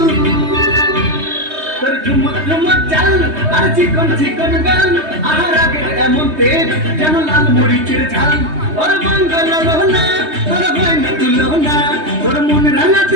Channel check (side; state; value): left; late; 3.2 ms